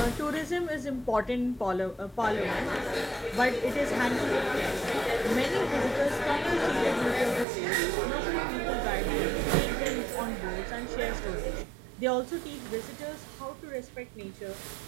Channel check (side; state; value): left; drops out; at 7.5 s